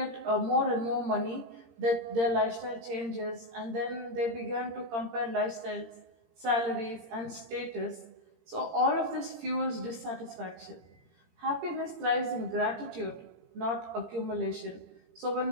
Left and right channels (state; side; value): late; left; 17 ms